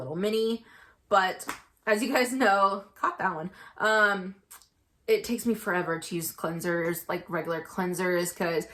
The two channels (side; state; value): both; identical; correlation 1.00